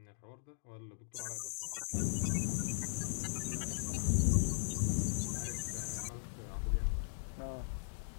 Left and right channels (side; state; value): right; silent; digital silence